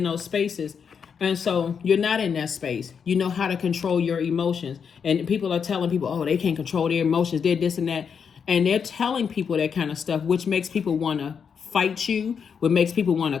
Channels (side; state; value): right; quieter; 6.7 dB